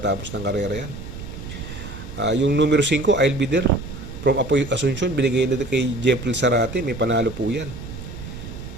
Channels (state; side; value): noise; right; rumble, 11 dB below the sound